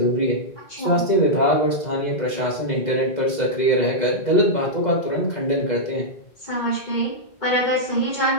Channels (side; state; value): right; late; 2.0 ms